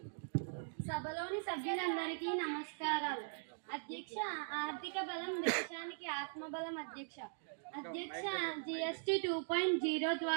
సభలోని సభ్యులందరికీ నమస్కారాలు. అధ్యక్ష, ఆర్థిక బలం దేశానికి ఆత్మబలం. అధ్యక్ష GST 2.0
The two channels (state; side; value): silent; left; digital silence